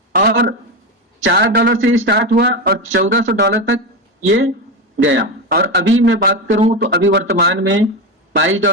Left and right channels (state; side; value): normal; both; correlation 0.15